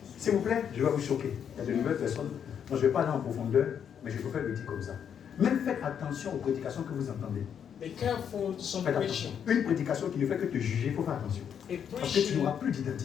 S'il vous plaît, je vais vous choquer. Il y a de nouvelles personnes. Moi, je ne vais pas aller en profondeur, mais je préfère le dire comme ça. Même faites attention aux prédications que vous entendez. big. Be careful to some Faites attention. preaching. Une prédication qui ne fait que te juger, il faut faire attention. A Parce que tu n'auras preaching plus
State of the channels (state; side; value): quieter; right; 8.2 dB